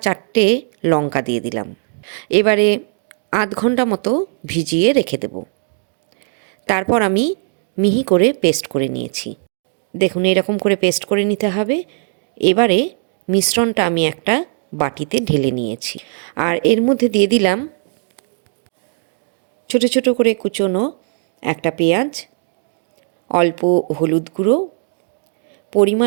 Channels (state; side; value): silent; left; 55 dB below the other